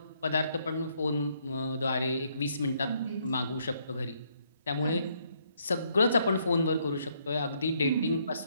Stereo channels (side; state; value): both; inverted; correlation -0.71